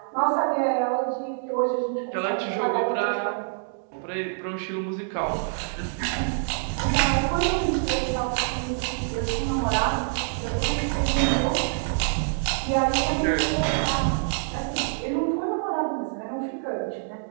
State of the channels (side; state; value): left; silent; 61 dB below the other